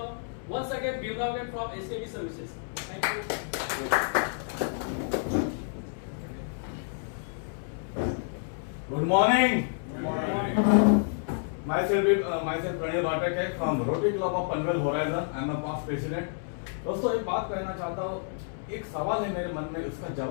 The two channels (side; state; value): right; silent; 58 dB below the other